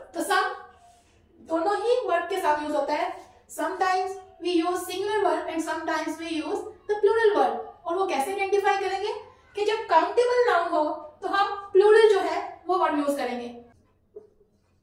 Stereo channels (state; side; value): identical; both; correlation 1.00